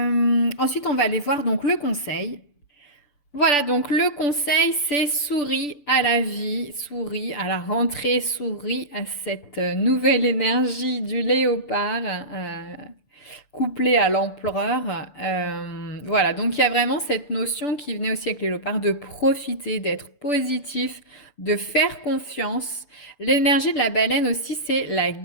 on va aller voir donc le conseil. Voilà, donc le conseil, c'est souris à la vie, souris à la rentrée, souris à cette nouvelle énergie du léopard, couplée à l'empereur. Voilà, donc il y a vraiment cette notion qui venait aussi avec les léopards de profiter, d'être positif, de faire confiance. L'énergie de la baleine aussi, c'est la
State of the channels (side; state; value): right; late; 6.9 ms